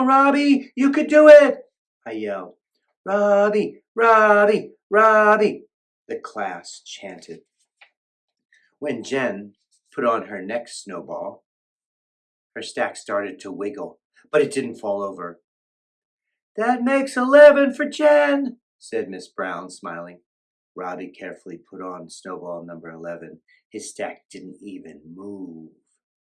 Robbie, you could do it!" I yelled. "Robbie, Robbie, Robbie," the class chanted. When Jen put on her next snowball, her stack started to wiggle, but it didn't fall over. "That makes 11 for Jen," said Miss Brown, smiling. Robbie carefully put on snowball number 11. His stack didn't even move.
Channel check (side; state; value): both; identical; correlation 1.00